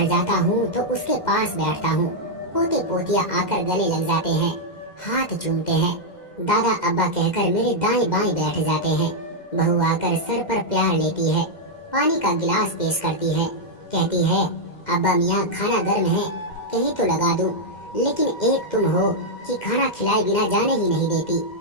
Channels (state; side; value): late; right; 2.0 ms